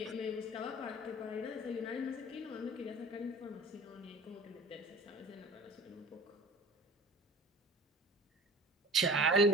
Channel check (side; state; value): both; normal; correlation 0.42